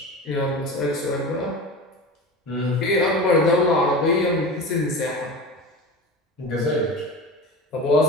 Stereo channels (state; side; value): normal; both; correlation 0.30